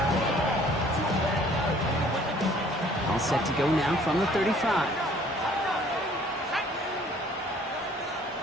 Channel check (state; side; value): normal; both; correlation 0.56